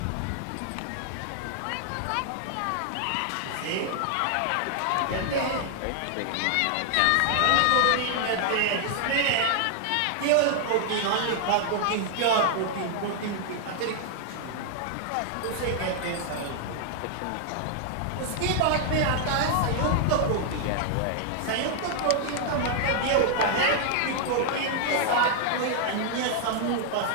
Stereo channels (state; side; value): different; both; correlation 0.00